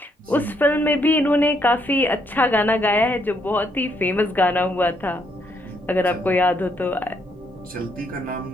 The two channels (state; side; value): normal; both; correlation 0.73